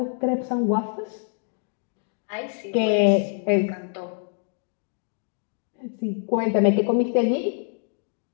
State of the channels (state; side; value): silent; right; 55 dB below the other